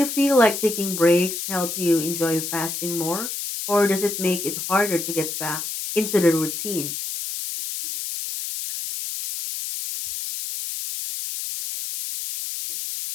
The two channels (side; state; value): left; noise; hiss, 5 dB below the sound